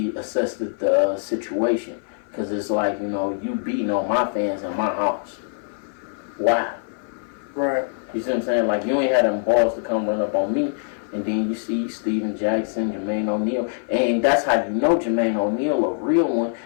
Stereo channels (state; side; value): silent; right; 55 dB below the other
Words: the situation. Because it's like, you know, you beating on my fans in my house. Why? Right. You see what I'm saying? Like, you ain't had them balls to come run up on me. And then you see Steven Jackson, Jermaine O'Neal. And that's how you know Jermaine O'Neal a real one,